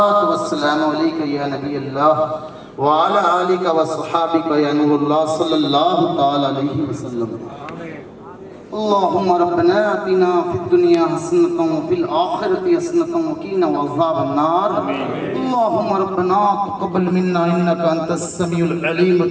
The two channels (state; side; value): identical; both; correlation 1.00